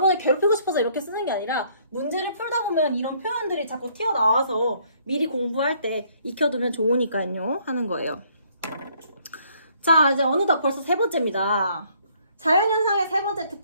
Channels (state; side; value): inverted; both; correlation -0.65